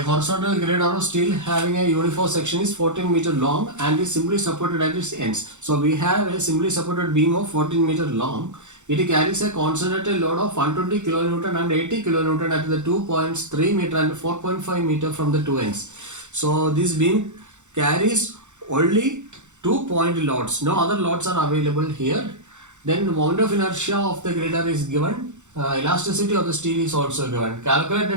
horizontal grid of steel having a uniform section is 14 meter long and is simply supported at its ends. So we have a simply supported beam of 14 meter long. It carries a concentrated load of 120 kilonewton and 80 kilonewton at the 2 points 3 meter and 4.5 meter from the two ends. So this beam carries only 2-point loads. No other loads are available here. Then the moment of inertia of the grader is given. Elasticity of the steel is also given. Calculate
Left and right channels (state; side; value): late; left; 0.84 ms